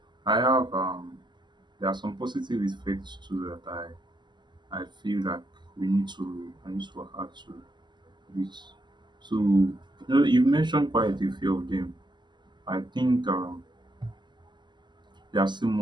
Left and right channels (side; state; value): left; late; 0.21 ms